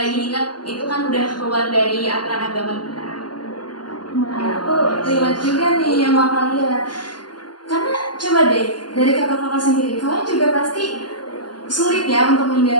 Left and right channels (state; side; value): late; right; 0.70 ms